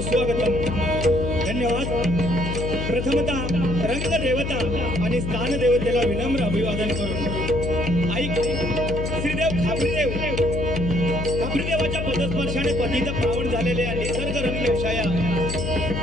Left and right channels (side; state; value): left; noise; hum, 3 dB below the sound